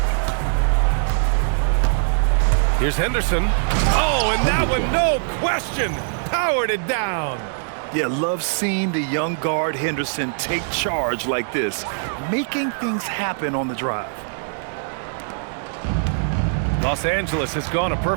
Here's Henderson. Oh, and that one, no question, powered it down. Yeah, love seeing the young guard Henderson take charge like this, making things happen on the drive. Los Angeles has gone a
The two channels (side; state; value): left; silent; digital silence